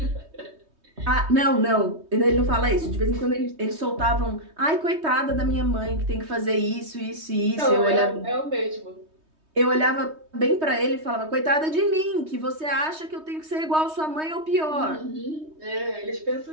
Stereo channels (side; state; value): left; late; 3.2 ms